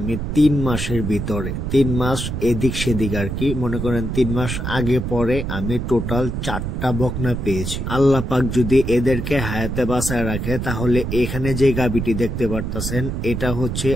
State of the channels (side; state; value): right; noise; rumble, 3 dB below the sound